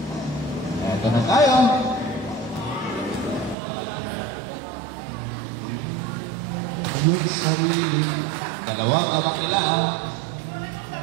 Eto na tayo. Yung sarili. Dalawang lamang nila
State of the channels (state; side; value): drops out; left; at 3.6 s